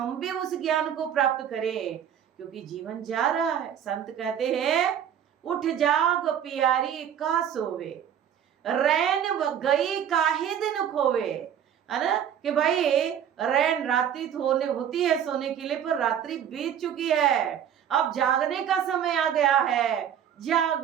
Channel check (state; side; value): quieter; left; 9.2 dB